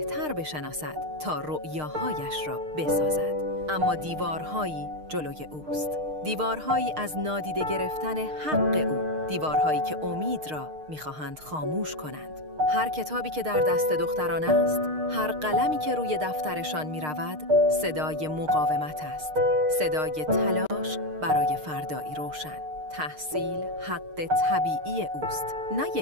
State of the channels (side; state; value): left; late; 6.5 ms